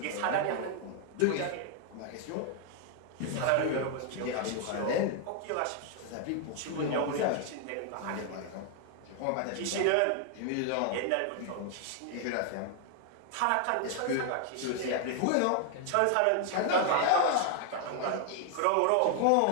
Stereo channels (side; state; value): both; different; correlation 0.00